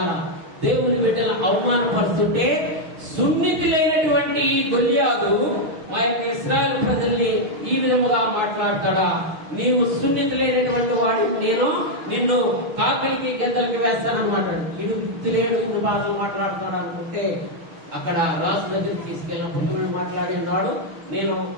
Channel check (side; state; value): left; late; 6.5 ms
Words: దేవుని బిడ్డల అవమానపరుస్తుంటే సున్నితులైనటువంటి గొల్యాదు మా యొక్క ఇశ్రాయేలు ప్రజల్ని ఈ విధముగా మాట్లాడతాడా? నీవు సున్నితులైనటువంటి వాడి, నేను నిన్ను కాకలికి గెద్దలకి వేస్తానన్నమాట. ఇడు తెలియదు ఇన్ని బాధలు మాట్లాడుతున్నాడు అనుకుంటే అక్కడ రాజు దగ్గరికి తీసుకెళ్ళినప్పుడు దేవుడు మాట్లాడి ఉన్నాడు, నేను